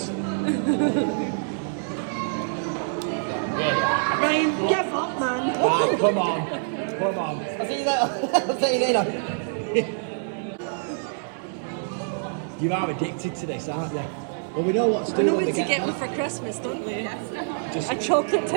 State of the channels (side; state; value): left; silent; 61 dB below the other